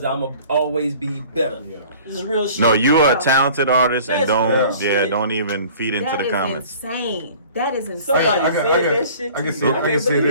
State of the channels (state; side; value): inverted; both; correlation -0.48